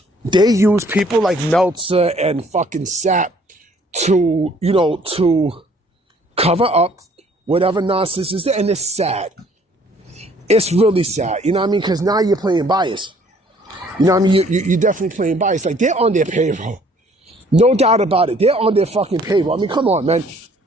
people like Meltzer and fucking Sapp to cover up whatever nonsense is there. And it's sad. It's really sad. You know what I mean? Because now you're playing bias. You know what I mean? You're definitely playing bias. Like, they're on their payroll. No doubt about it. They're on their fucking payroll. I mean, come on, man.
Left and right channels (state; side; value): normal; both; correlation 0.59